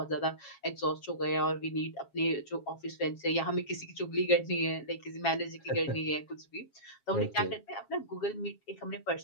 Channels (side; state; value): right; late; 7.3 ms